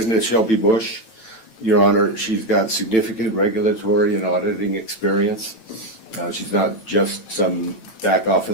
Shelby Bush, Your Honor, she's got significant regulatory and auditing experience. She's not just some back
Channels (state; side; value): late; right; 9.0 ms